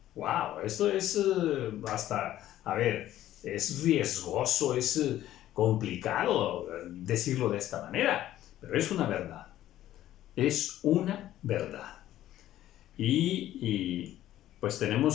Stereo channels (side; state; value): right; quieter; 13.3 dB